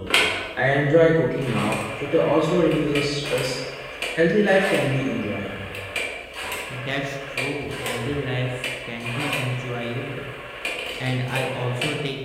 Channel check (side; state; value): both; identical; correlation 1.00